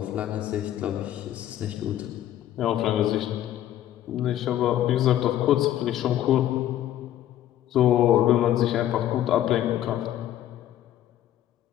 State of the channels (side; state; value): right; quieter; 12.2 dB